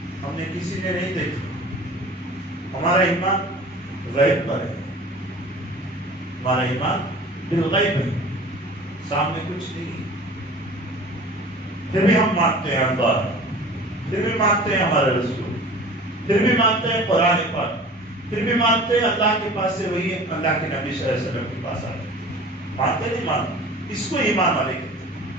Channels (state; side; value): normal; both; correlation 0.42